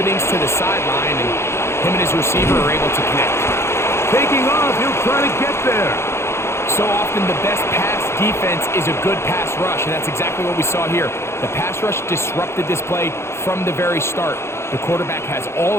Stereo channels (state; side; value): late; right; 0.13 ms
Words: to the sideline, and him and his receiver are able to connect. Taking off, he'll try to get there. So often the best pass defense is a good pass rush, and that's exactly what we saw here. The pass rush disrupted this play from the very start. The quarterback has all